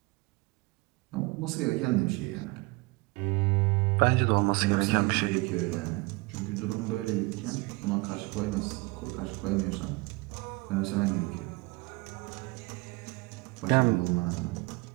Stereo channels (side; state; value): left; quieter; 25.0 dB